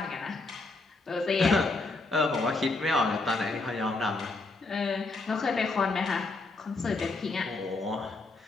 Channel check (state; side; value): quieter; right; 3.4 dB